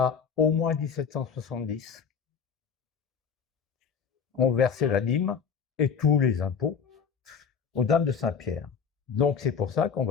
au moins 1770, on versait la dîme et tous les impôts aux Dames de Saint-Pierre. Donc c'est pour ça qu'on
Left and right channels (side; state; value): right; quieter; 6.4 dB